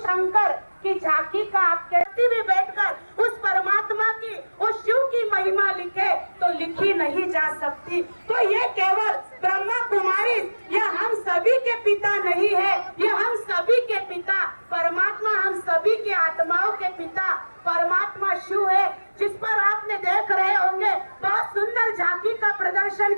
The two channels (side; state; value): both; inverted; correlation -1.00